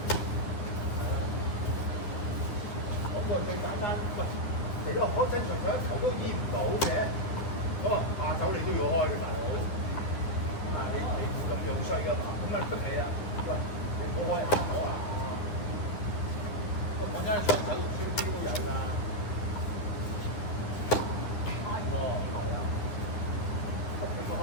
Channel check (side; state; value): right; late; 9.8 ms